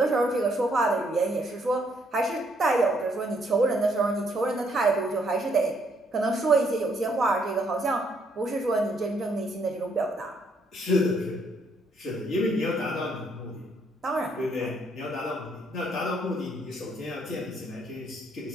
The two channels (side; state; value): both; normal; correlation 0.71